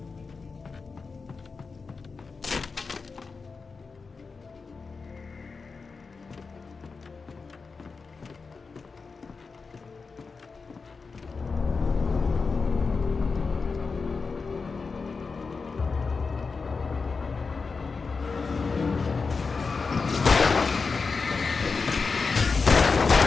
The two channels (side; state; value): right; quieter; 4.6 dB